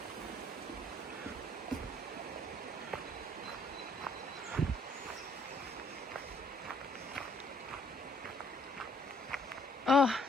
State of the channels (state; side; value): normal; both; correlation 0.64